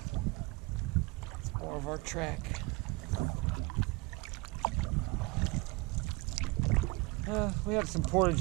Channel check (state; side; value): quieter; left; 24.9 dB